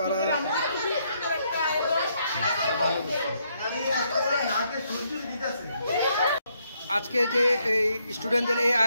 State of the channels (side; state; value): both; inverted; correlation -0.74